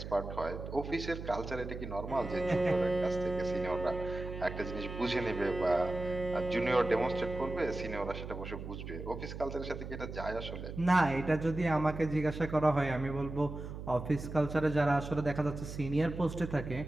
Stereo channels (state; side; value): noise; right; hum, 9 dB below the sound